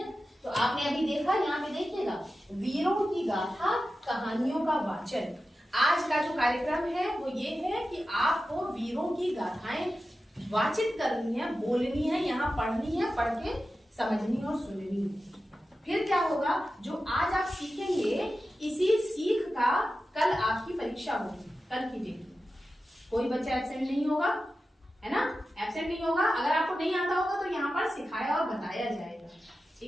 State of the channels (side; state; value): both; normal; correlation 0.93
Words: तो आपने अभी देखा, यहाँ पे देखिएगा, वीरों की गाथा, कहानियों का वाचन। आज का जो कार्यक्रम है वो ये है कि आपको वीरों की गाथाएं वाचित करनी है, बोलनी है, यहाँ पढ़नी है, पढ़ के समझनी और सुननी है। फिर क्या होगा, जो आज आप सीखेंगे, इसी सीख का कल आपकी परीक्षा होगी, कल की डेट में। कोई बच्चा एब्सेंट नहीं होगा, है ना? एब्सेंट नहीं होगा। अगर आपको नहीं आता होगा तो यहाँ पर सिखाया और बताया जाएगा।